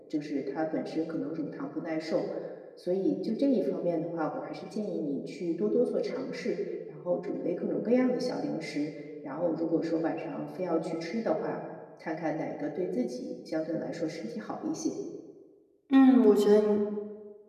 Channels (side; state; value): both; identical; correlation 1.00